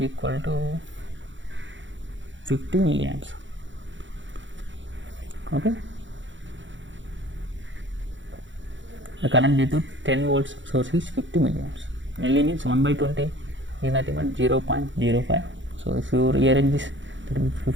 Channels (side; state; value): left; late; 0.55 ms